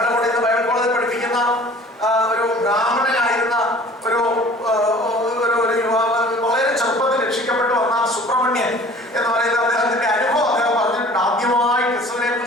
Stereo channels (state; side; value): normal; both; correlation 0.48